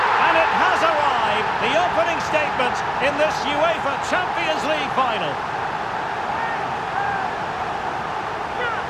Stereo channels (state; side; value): identical; both; correlation 1.00